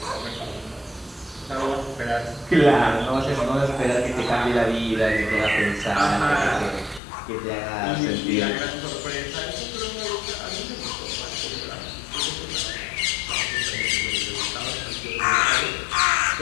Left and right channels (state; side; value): drops out; right; at 7.0 s